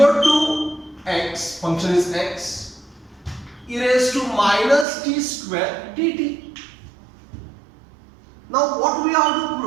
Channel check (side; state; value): left; drops out; at 4.9 s